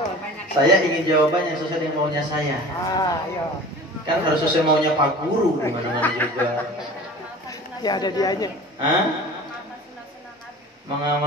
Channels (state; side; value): normal; both; correlation 0.41